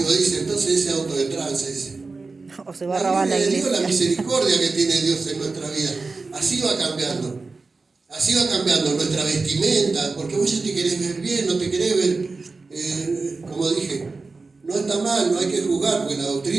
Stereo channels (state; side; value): quieter; left; 3.9 dB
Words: dice, entonces ese auto de tranza, dice. O se va a robar la gloria de iglesia. Dios, la misericordia que tiene Dios en nuestra vida. Así va cambiando. Así va cambiando nuestra vestimenta, porque vos ya te querés ver bien, no te querés ver, como dije, no está mal, no hay que juzgar, porque la